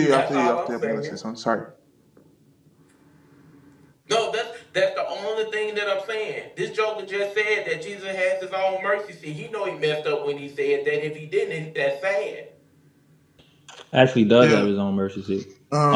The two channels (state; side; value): identical; both; correlation 1.00